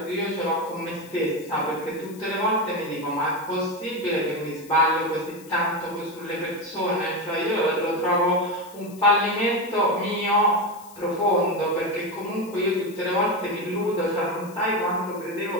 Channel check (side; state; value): left; noise; hiss, 22 dB below the sound